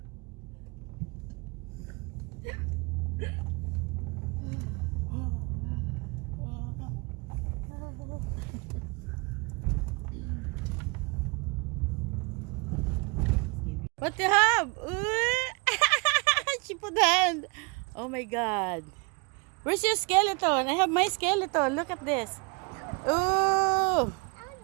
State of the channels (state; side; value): quieter; left; 30.5 dB